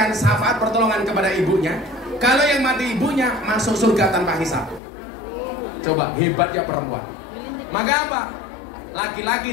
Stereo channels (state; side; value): drops out; right; at 4.8 s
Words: syafaat pertolongan kepada ibunya. Kalau yang mati ibunya, masuk surga tanpa hisab. Coba, hebatnya perempuan. Maka apa?